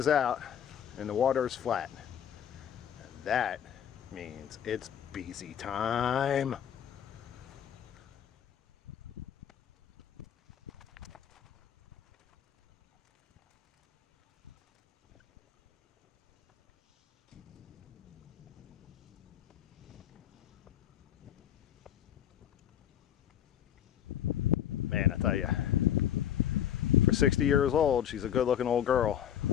out, and the water is flat. And that means it's Biese time. Man, I tell you, for 60 years old, she's a good-looking old girl.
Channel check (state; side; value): quieter; right; 10.0 dB